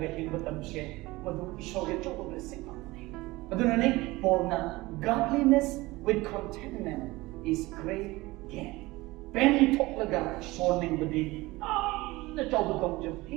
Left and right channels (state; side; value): quieter; left; 20.7 dB